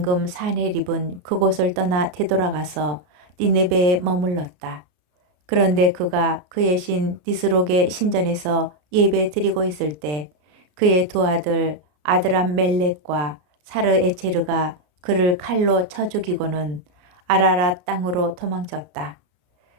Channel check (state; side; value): late; left; 33 ms